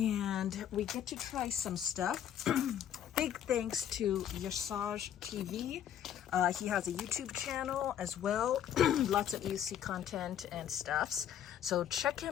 we get to try some stuff. Big thanks to Yasaj TV. He has a YouTube channel as well. Lots of UC content and stuffs. So check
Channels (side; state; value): right; quieter; 9.9 dB